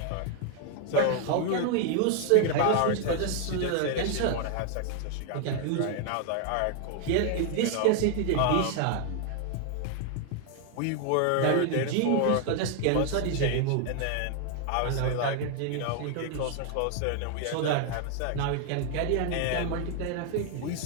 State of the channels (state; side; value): different; both; correlation 0.00